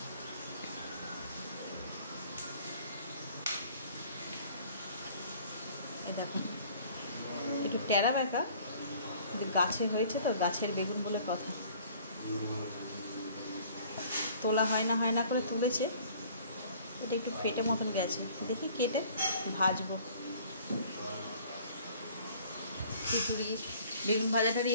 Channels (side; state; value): both; inverted; correlation -0.53